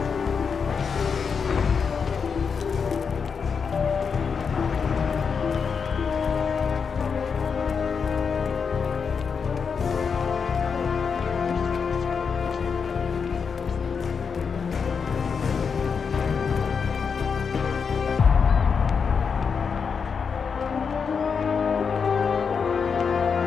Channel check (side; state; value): right; quieter; 5.9 dB